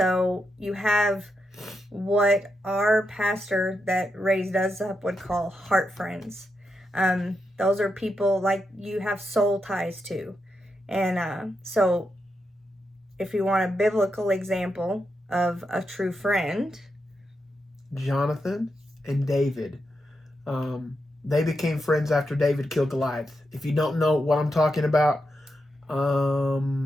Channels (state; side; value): normal; both; correlation 0.85